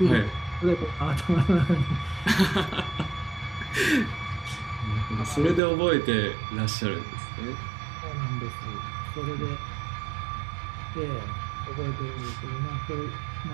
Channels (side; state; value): left; drops out; at 5.6 s